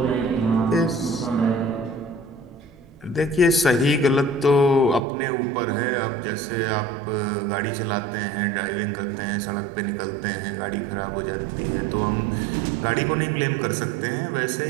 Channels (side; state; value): left; drops out; at 5.1 s